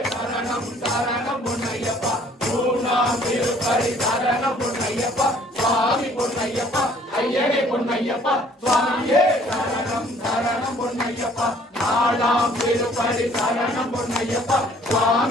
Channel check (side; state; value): both; normal; correlation 0.58